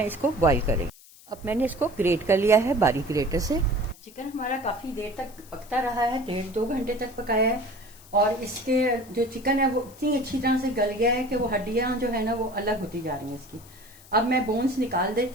इसको बॉईल करें। अब मैंने इसको ग्रेट कर लिया है बारीक ग्रेटर से। चिकन हमारा काफ़ी देर तक पकता रहा है, 1.5-2 घंटे तक पकाया है और इसके जो चिकन है वो इतनी अच्छी तरह से गल गया है कि वो हड्डियाँ जो है ना वो अलग होती जा रही हैं इसकी। अब मैं बोन्स निकाल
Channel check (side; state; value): left; noise; hiss, 23 dB below the sound